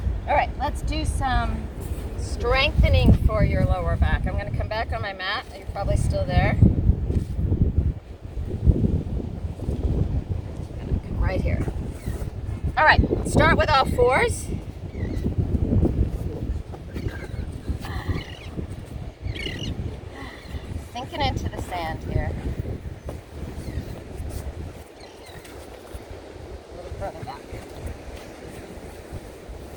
All right, let's do some strengthening for your lower back. I'm going to come back on my mat. You're probably still there. I'm going to come right here. All right, start with all fours. Sinking into the sand here. A little further back.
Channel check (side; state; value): both; identical; correlation 1.00